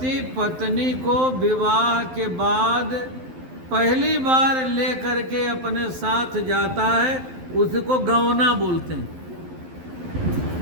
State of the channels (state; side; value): late; left; 12 ms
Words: पत्नी को विवाह के बाद पहली बार लेकर के अपने साथ जाता है, उसको गवना बोलते हैं।